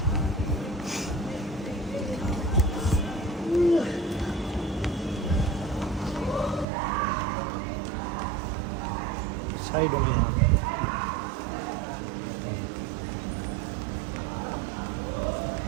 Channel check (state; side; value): drops out; left; at 6.7 s